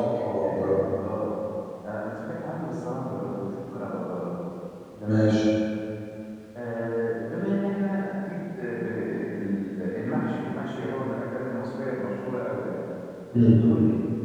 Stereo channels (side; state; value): both; identical; correlation 1.00